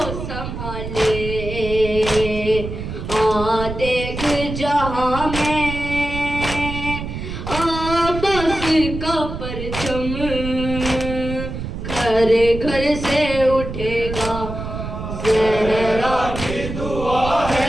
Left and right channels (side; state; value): right; noise; rumble, 7 dB below the sound